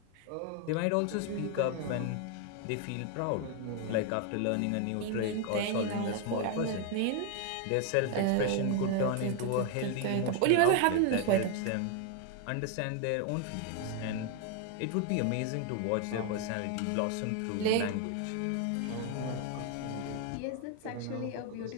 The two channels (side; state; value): both; different; correlation 0.01